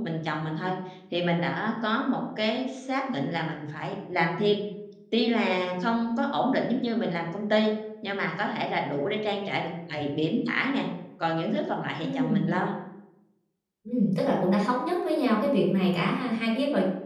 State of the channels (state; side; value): identical; both; correlation 1.00